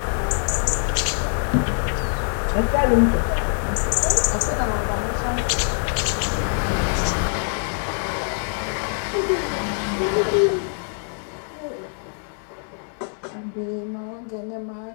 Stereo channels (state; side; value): silent; right; 56 dB below the other